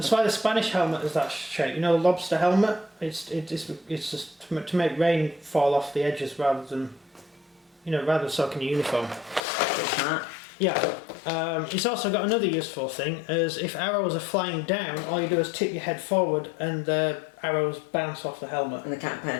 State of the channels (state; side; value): drops out; right; at 9.4 s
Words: why the Spanish helmet is that shape. You know, the lobster helmet? It's just to make rain fall off the edges rather than soaking your uniform. Yeah. It's also got another useful thing, as if arrows are flying down, all you do is tip your head forward and the arrows bounce off the helmet. And they can't